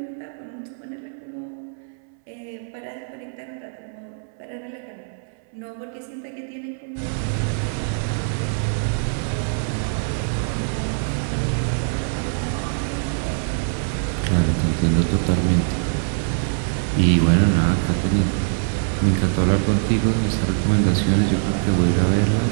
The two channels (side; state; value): left; silent; 63 dB below the other